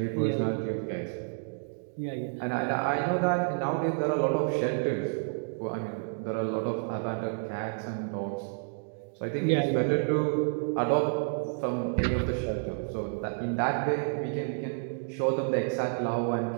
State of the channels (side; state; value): left; silent; digital silence